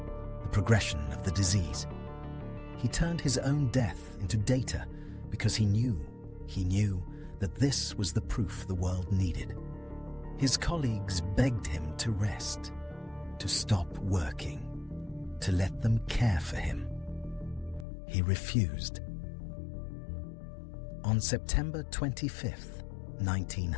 the progression of the disease. He turned his own death into data because he knew that this was the proof the world needed. His colleagues begged him to rest, to stop working, to let them care for him. He refused. On September 25th,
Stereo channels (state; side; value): drops out; right; at 17.9 s